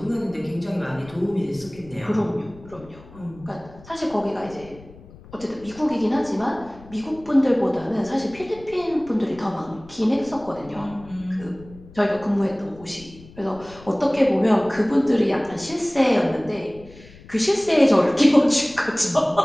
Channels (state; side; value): noise; left; rumble, 21 dB below the sound